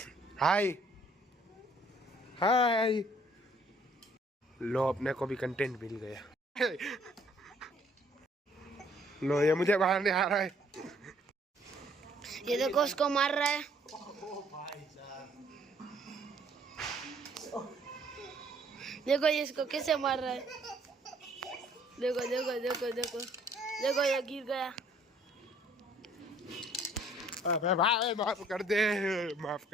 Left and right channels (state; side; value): normal; both; correlation 0.61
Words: हाय लो अपने को भी कंटेंट मिल गया लो ये मुझे बाहर नहीं आ रहा है ये देखो उसको मार रहा है देखो ये इसको कैसे मार रहा है देखो ये गिर गया भाई माफ कर